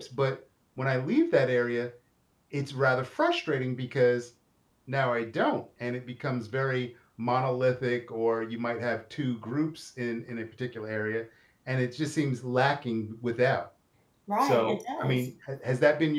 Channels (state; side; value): identical; both; correlation 1.00